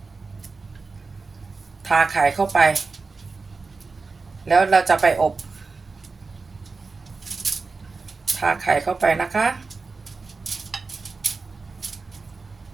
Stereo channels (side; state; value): left; quieter; 4.2 dB